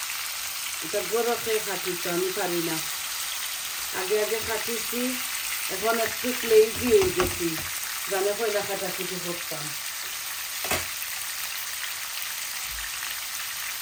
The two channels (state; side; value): identical; both; correlation 1.00